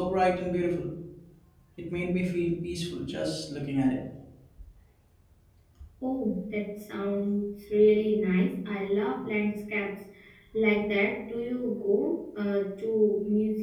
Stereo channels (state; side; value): identical; both; correlation 1.00